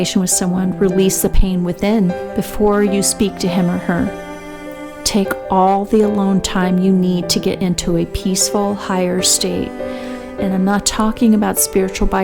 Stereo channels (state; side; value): identical; both; correlation 1.00